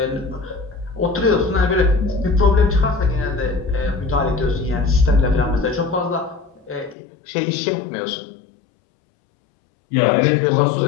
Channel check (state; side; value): drops out; right; at 7.0 s